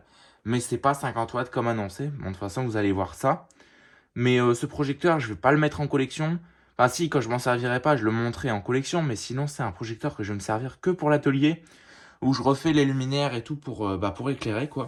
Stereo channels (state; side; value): identical; both; correlation 1.00